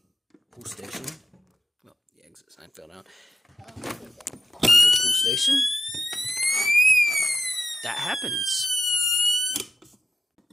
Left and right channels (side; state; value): both; normal; correlation 0.91